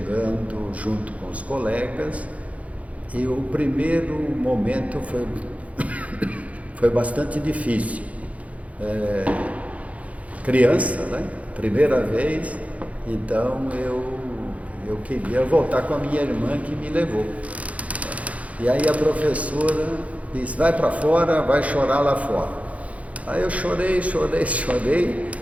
junto com os colegas, e o primeiro momento foi bastante difícil. Criança, né? Primeira vez, então eu queria voltar com a minha irmã que me levou. E aí a professora disse, vai para fora, vai chorar lá fora. Aí eu chorei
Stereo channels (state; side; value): late; left; 0.067 ms